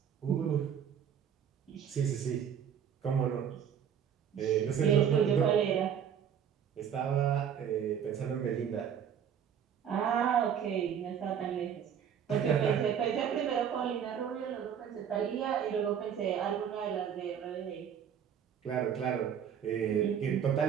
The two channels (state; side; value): quieter; left; 8.3 dB